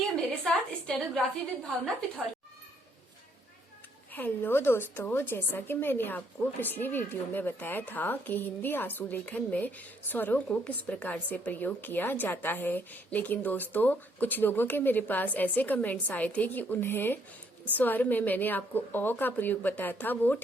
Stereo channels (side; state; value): both; normal; correlation 0.69